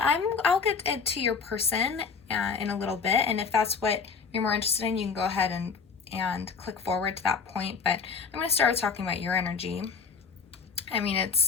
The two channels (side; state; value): right; quieter; 5.5 dB